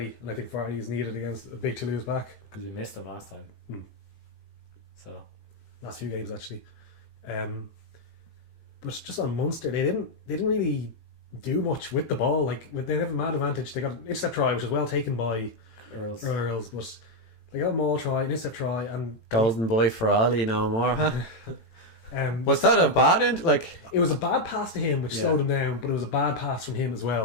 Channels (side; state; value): right; late; 18 ms